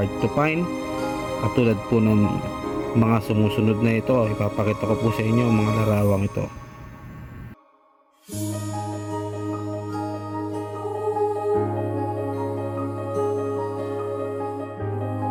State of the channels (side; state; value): both; identical; correlation 1.00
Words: to find, katulad po ng mga sumusunod na ito. Ipapakita ko po sa inyo ang mga larawang ito.